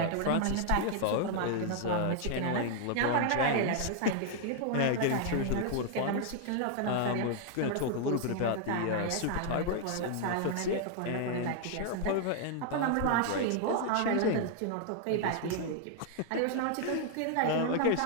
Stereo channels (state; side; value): different; both; correlation 0.00